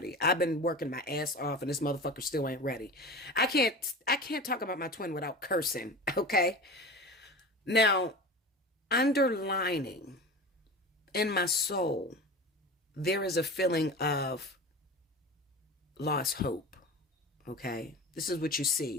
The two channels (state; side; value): normal; both; correlation 0.32